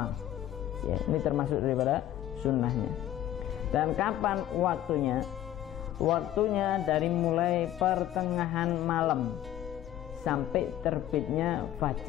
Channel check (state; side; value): quieter; right; 12.7 dB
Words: Ya, ini termasuk daripada sunnahnya. Dan kapan waktunya? Waktunya dari mulai pertengahan malam sampai terbitnya